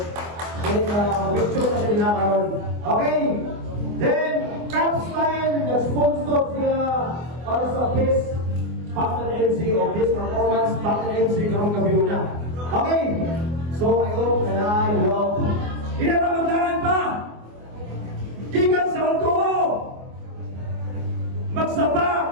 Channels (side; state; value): left; late; 24 ms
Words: Then, picture na siya din karon. Okay, then, Cap Style, nag-sponsor siya para sa best partner MC o best performance partner MC karong gabi na. Okay, so I hope that I will pinapagandaan pa gikan sa Alcoa magsapa